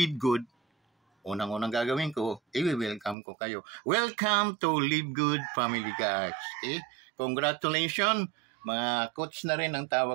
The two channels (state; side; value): drops out; left; at 3.2 s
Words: Good, unang-unang gagawin ko, i-welcome ko kayo. Welcome to Live Good Family, guys. Okay? Congratulations, mga coach na rin ang